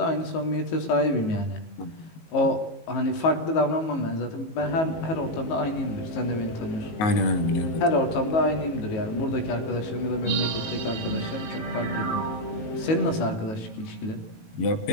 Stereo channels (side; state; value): right; late; 18 ms